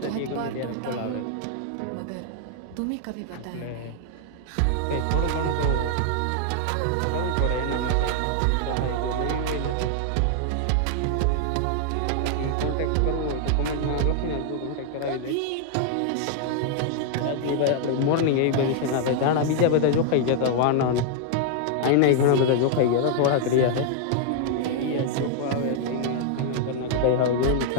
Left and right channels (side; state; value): both; different; correlation 0.00